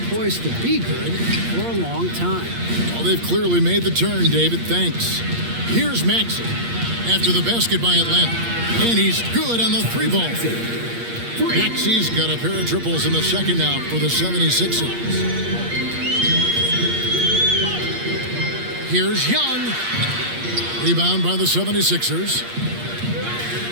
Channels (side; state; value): left; late; 8.5 ms